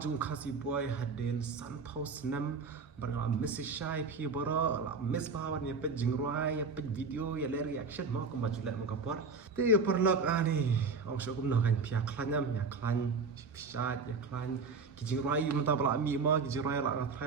khasi boy hadin sun house nam barang message shy phi boro la miss bawan ya pet jingruai ya pet video ya le reaction mo ko majula mo kapor ti perlok ani ong so kum no kan pia klanyam ya klan pisa ya klan ki jingruai menta bala mi mo ki jingruai la na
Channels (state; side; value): quieter; left; 4.5 dB